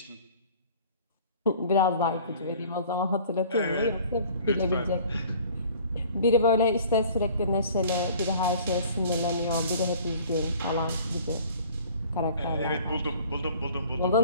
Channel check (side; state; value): both; inverted; correlation -0.50